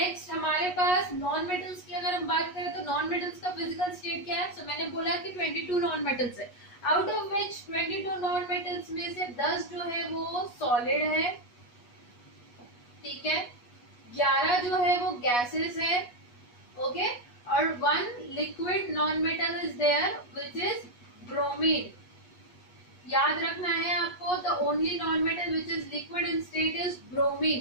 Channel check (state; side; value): late; right; 8.3 ms